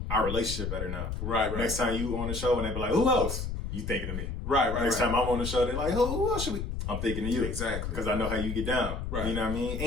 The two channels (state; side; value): noise; left; rumble, 4 dB below the sound